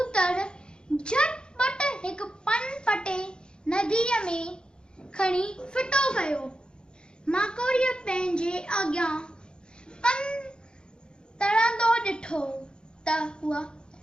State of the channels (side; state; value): right; late; 0.049 ms